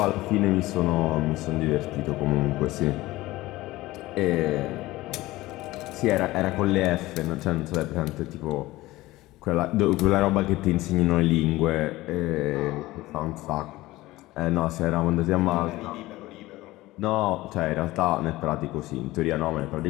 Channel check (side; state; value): right; quieter; 18.3 dB